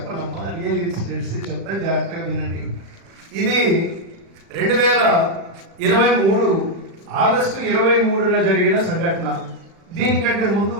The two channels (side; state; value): left; late; 36 ms